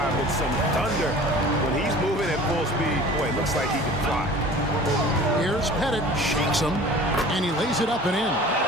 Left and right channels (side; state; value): both; normal; correlation 0.44